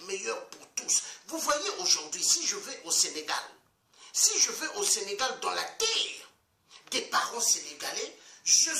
meilleure pour tous. Vous voyez aujourd'hui, si je vais au Sénégal, dans la terre des parents sénégalais, je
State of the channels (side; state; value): both; identical; correlation 1.00